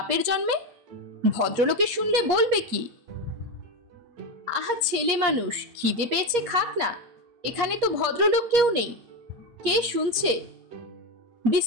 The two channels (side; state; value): left; late; 8.4 ms